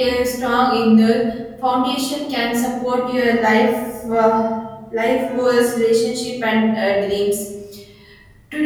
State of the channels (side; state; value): both; identical; correlation 1.00